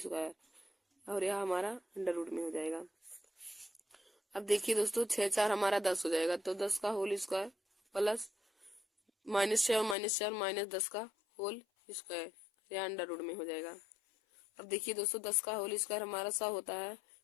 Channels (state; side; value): drops out; right; at 10.0 s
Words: और यह हमारा अंडर रूट में हो जाएगा। अब देखिए दोस्तों 6 4 हमारा 10 हो जाएगा, तो 10 का होल स्क्वायर प्लस -6 और -4 -10 का होल स्क्वायर, यह अंडर रूट में हो जाएगा। अब देखिए दोस्तों 10 का होल स्क्वायर हमारा 100 होता है,